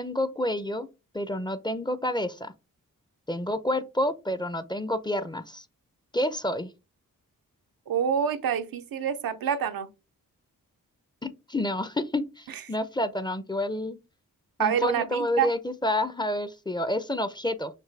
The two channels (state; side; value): normal; both; correlation 0.38